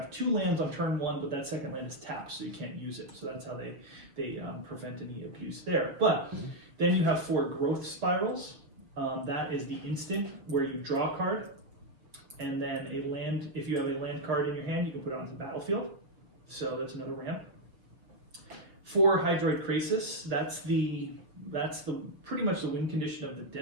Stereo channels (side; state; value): left; late; 6.1 ms